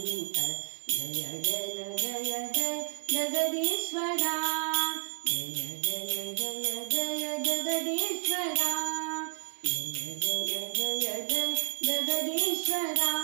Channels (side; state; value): left; silent; 57 dB below the other